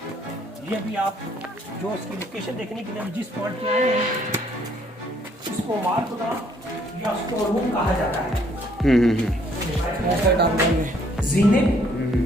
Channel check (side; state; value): both; normal; correlation 0.65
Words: ये भी आप जो इसकी लोकेशन देखने के लिए जिस पॉइंट पे आए हैं, इसको मारकुदा या स्टोर रूम कहा जाता है। जीने,